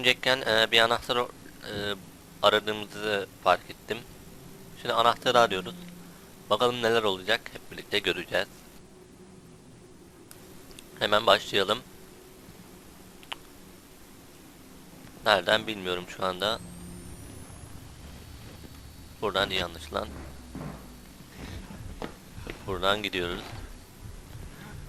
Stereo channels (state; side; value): identical; both; correlation 1.00